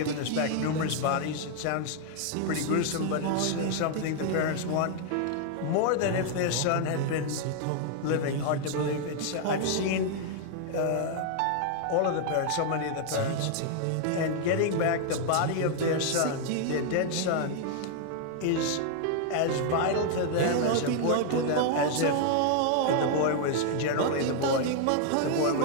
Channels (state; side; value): different; both; correlation 0.00